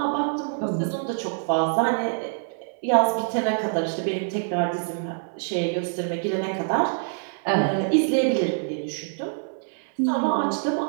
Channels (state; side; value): silent; left; 62 dB below the other